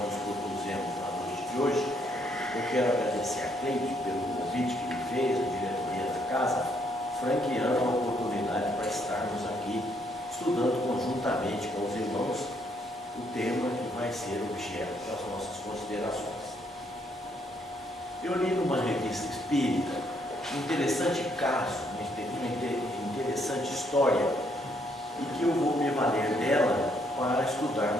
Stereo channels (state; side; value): normal; both; correlation 0.71